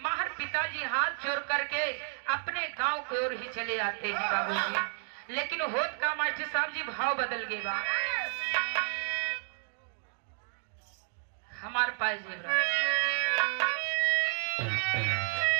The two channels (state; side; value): silent; left; digital silence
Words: माहर पिताजी हाथ जोड़ करके अपने गांव की ओर ही चले आते हैं बाबूजी। लेकिन होत का मास्टर साहब जी भाव बदल गए बा हमारे पास